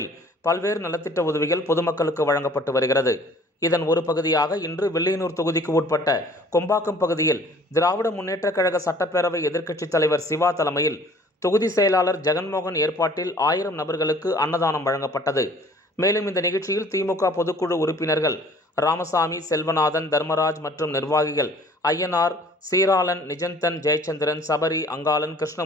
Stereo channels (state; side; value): normal; both; correlation 0.53